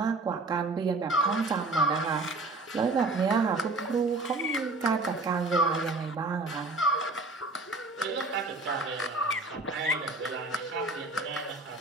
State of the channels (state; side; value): quieter; left; 3.1 dB